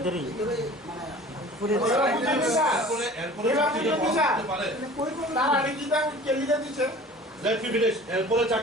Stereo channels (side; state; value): both; normal; correlation 0.44